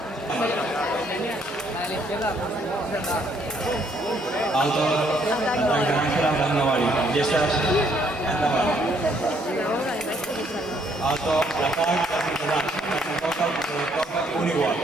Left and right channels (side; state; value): both; normal; correlation 0.68